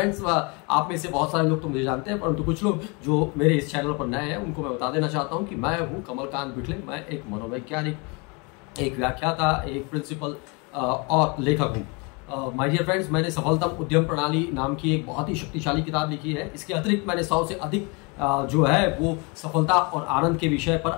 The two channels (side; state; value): right; quieter; 30.4 dB